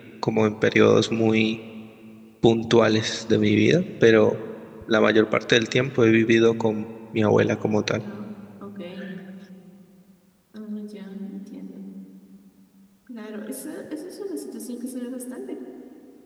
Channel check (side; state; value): both; identical; correlation 1.00